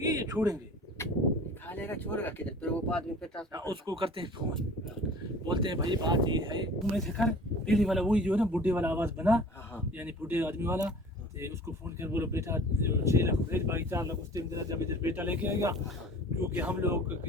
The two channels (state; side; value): normal; both; correlation 0.45